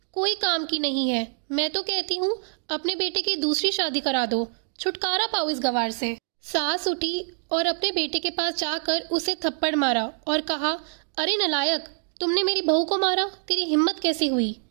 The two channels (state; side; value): silent; left; digital silence